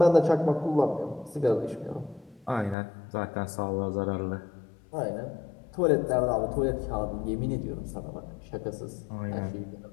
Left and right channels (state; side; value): drops out; right; at 2.8 s